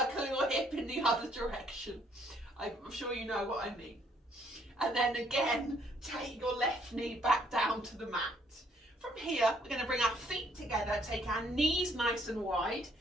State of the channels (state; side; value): normal; both; correlation 0.66